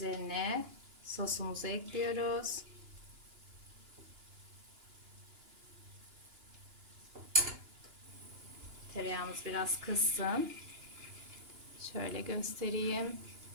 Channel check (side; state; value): left; late; 2.9 ms